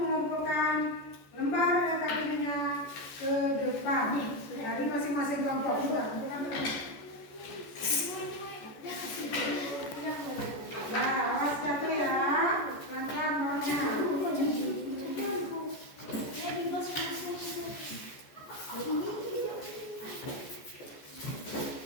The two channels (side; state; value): right; late; 14 ms